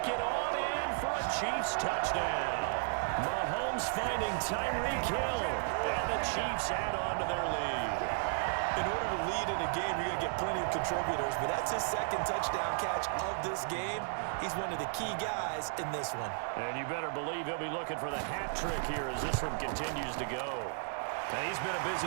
it on in for a Chiefs touchdown. Mahomes finding Tyreek Hill. And the Chiefs add on to their lead. In order to lead in a game, you're going to get plenty of contributors, but that's his 2nd touchdown catch of this game. He's one of the key guys in this one. And you better believe he'll be looking for the hat trick here as this one continues to go. And he's been a busy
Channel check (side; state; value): left; silent; digital silence